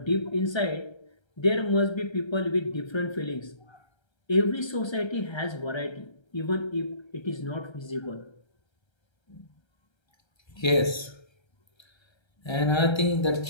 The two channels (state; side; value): late; right; 1.3 ms